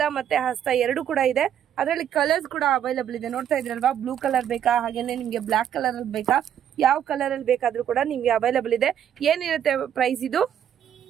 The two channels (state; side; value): quieter; left; 9.8 dB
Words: ಮತ್ತೆ ಹಸ್ತ ಎರಡು ಕೂಡ ಇದೆ. ಅದರಲ್ಲಿ ಕಲರ್ಸ್ ಕೂಡ ಅವೈಲಬಲ್ ಇದೆ. ನೋಡ್ತಾ ಇದ್ರಲ್ವಾ, ಬ್ಲೂ ಕಲರ್ ಬೇಕಾ, ಹಾಗೇನೆ ನಿಮ್ಗೆ ಬ್ಲಾಕ್ ಕಲರ್ ಅಲ್ಲಿ ಬೇಕಾ, ಯಾವ ಕಲರ್ ಅಲ್ಲಿ ಬೇಕಾದ್ರೂ ಕೂಡ ನಿಮ್ಗೆ ಅವೈಲಬಲ್ ಇದೆ. ಏನಿರುತ್ತೆ ಪ್ರೈಸ್ ಇದು?